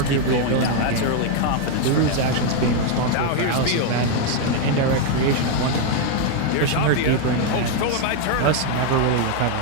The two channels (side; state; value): both; different; correlation 0.01